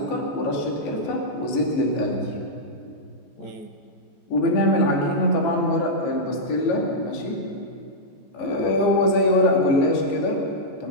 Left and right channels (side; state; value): right; late; 14 ms